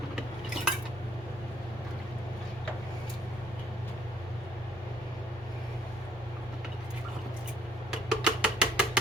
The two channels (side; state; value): both; normal; correlation 0.64